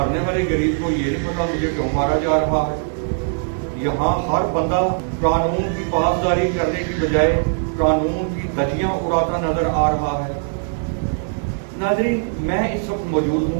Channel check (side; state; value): left; silent; digital silence